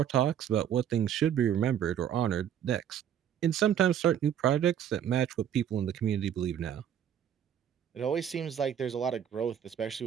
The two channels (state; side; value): quieter; left; 9.5 dB